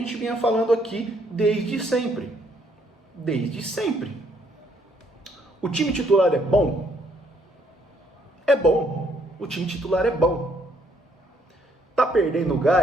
vinha falando aqui desde sempre. Desde sempre. O time titular é bom? É bom. O time titular é bom. Tá perdendo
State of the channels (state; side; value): normal; both; correlation 0.69